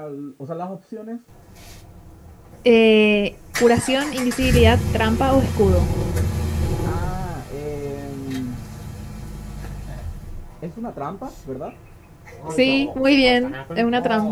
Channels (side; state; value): both; identical; correlation 1.00